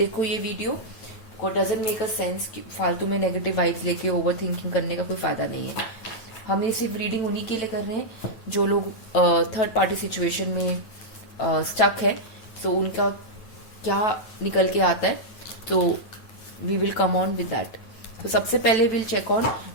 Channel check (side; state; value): right; late; 9.0 ms